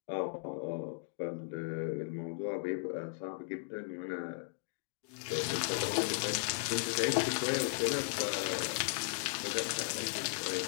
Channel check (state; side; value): silent; right; digital silence